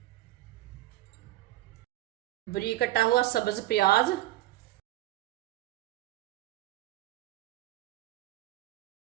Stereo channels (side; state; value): left; quieter; 16.1 dB